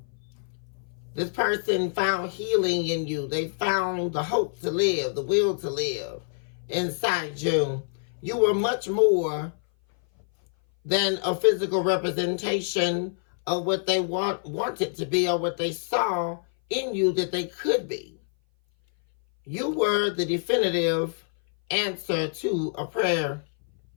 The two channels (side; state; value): right; silent; 58 dB below the other